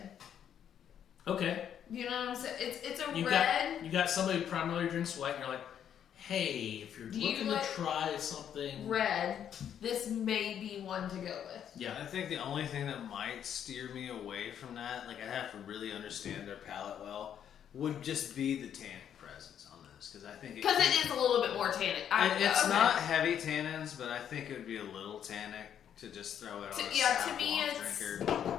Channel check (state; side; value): quieter; right; 9.2 dB